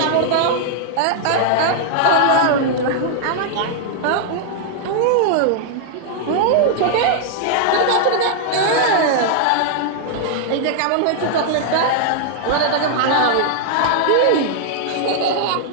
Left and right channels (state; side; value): different; both; correlation -0.01